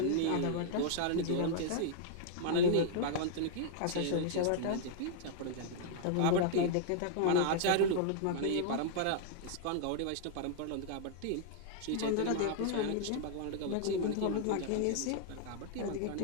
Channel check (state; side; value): different; both; correlation -0.01